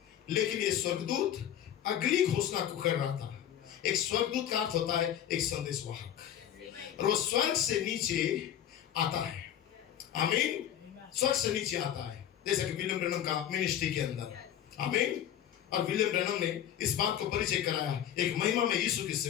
लेकिन ये स्वर्गदूत अगली घोषणा को कर रहा था। एक स्वर्गदूत का अर्थ होता है एक संदेशवाहक, और वो स्वर्ग से नीचे आता है। आमीन। स्वर्ग से नीचे आता है, जैसा कि विलियम ब्रैनम का मिनिस्ट्री के अंदर। आमीन। और विलियम ब्रैनम ने इस बात को परिचय कराया एक महिमा में यीशु की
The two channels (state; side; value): quieter; right; 10.5 dB